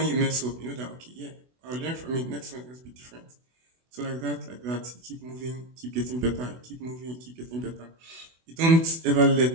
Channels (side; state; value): left; late; 24 ms